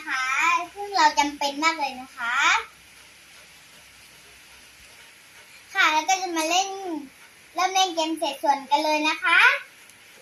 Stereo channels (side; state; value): both; identical; correlation 1.00